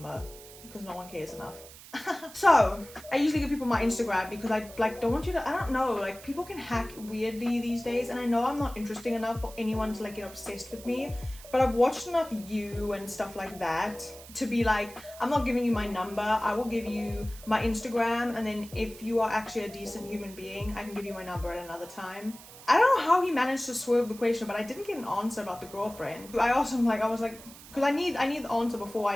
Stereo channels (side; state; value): right; noise; hiss, 18 dB below the sound